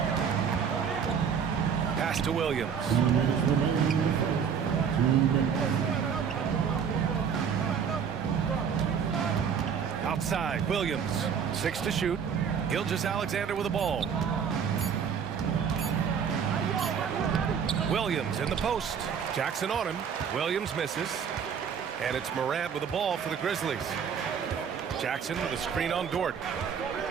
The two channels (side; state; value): left; quieter; 7.2 dB